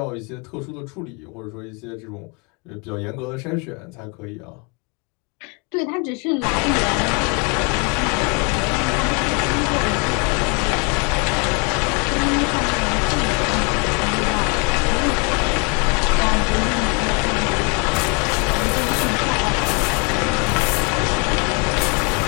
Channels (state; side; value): quieter; right; 31.8 dB